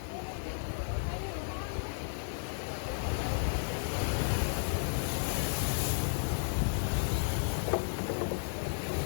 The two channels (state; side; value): silent; right; digital silence